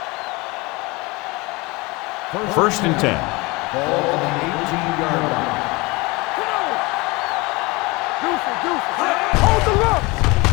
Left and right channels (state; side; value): quieter; right; 24.5 dB